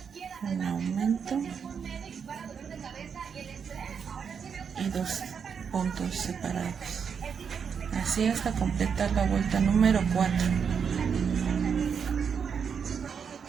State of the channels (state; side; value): quieter; left; 6.7 dB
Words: Un aumento y 2 puntos separados. Así hasta completar la vuelta número 4.